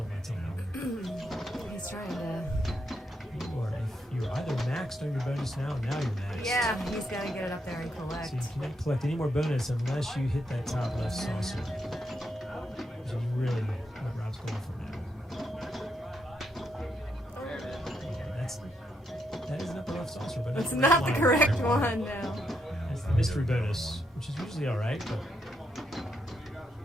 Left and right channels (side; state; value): both; normal; correlation 0.79